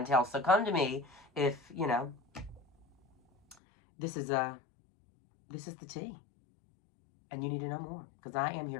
So come to me if, you know, this is the tea. And you need to know more, because I am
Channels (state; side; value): drops out; right; at 3.6 s